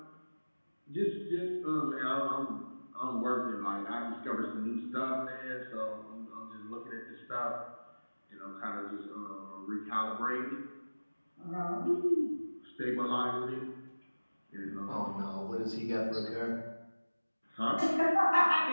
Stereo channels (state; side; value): inverted; both; correlation -1.00